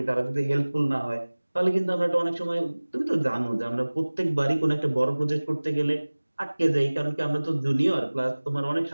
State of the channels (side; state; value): both; inverted; correlation -1.00